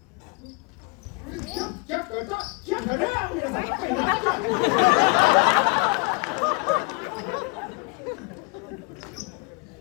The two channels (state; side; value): quieter; right; 31.5 dB